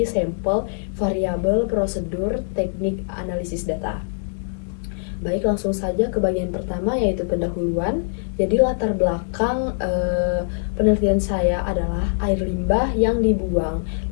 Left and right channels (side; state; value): right; silent; digital silence